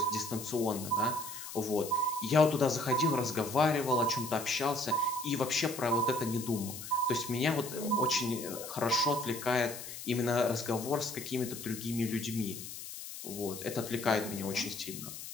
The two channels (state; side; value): noise; left; hiss, 10 dB below the sound